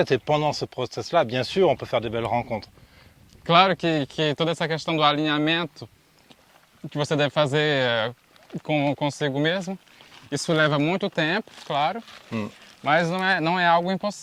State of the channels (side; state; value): both; identical; correlation 1.00